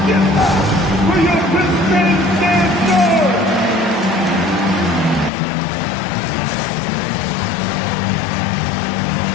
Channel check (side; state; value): right; drops out; at 5.3 s